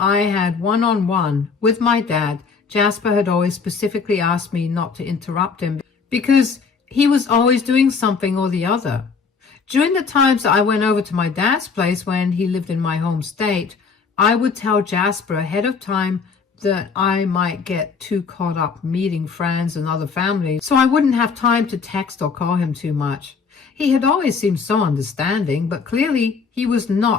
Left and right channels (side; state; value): right; quieter; 5.3 dB